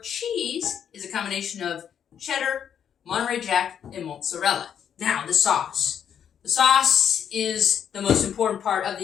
cheese is a combination of cheddar, Monterey Jack, and mozzarella. Now, the sauce. The sauce is the most important part of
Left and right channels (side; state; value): right; quieter; 8.6 dB